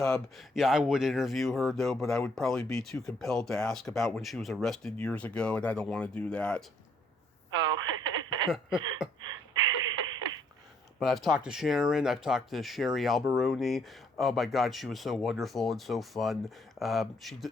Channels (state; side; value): normal; both; correlation 0.67